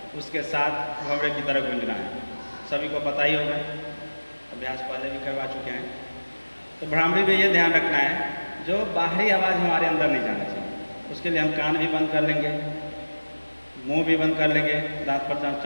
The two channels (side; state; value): both; inverted; correlation -1.00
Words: उसके साथ भंवरे की तरफ गूंजना है। सभी को पता ही होगा, अभ्यास पहले भी करवा चुके हैं। तो भ्रामरी में ये ध्यान रखना है जो बाहरी आवाज़ हमारे अंदर नहीं जाना चाहिए। उसके लिए हम कान भी बंद कर लेंगे, मुंह भी बंद कर लेंगे, दांत पर दांत